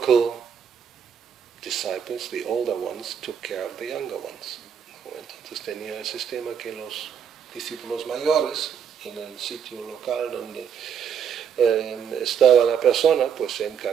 disciples, the older ones, took care of the younger ones. Entonces tenía el sistema que los discípulos mayores, en el sitio local donde estaba la persona, pues se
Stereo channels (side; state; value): left; quieter; 7.8 dB